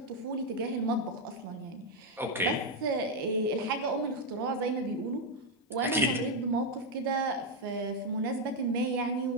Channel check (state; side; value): normal; both; correlation 0.02